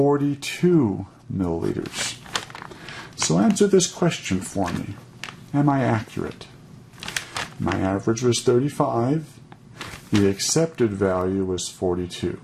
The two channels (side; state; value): both; identical; correlation 1.00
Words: milliliters. So answer this question for me. Am I accurate? My average was 35. The accepted value was 42.